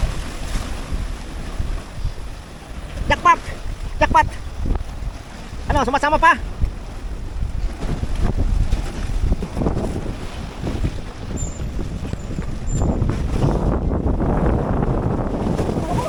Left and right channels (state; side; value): identical; both; correlation 1.00